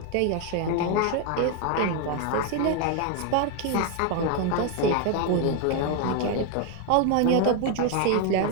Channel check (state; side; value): different; both; correlation 0.01